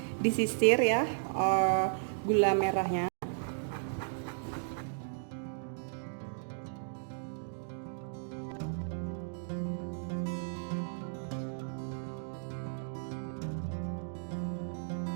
disisir ya gula merahnya.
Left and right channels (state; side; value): silent; left; digital silence